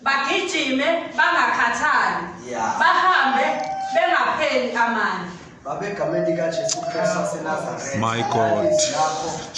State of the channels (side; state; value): both; identical; correlation 1.00